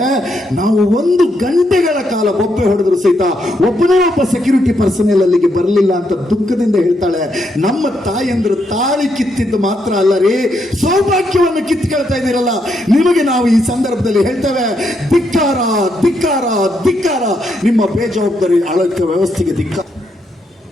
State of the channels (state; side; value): normal; both; correlation 0.78